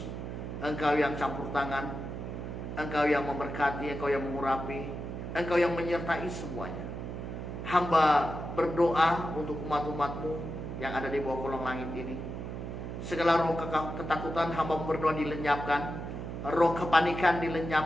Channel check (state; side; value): noise; right; hum, 6 dB below the sound